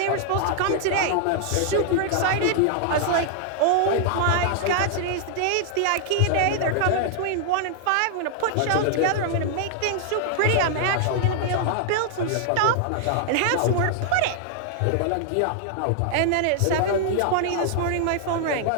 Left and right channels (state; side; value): different; both; correlation 0.00